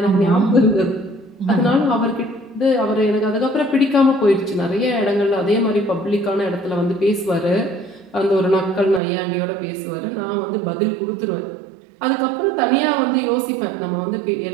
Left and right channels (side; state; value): left; drops out; at 9.0 s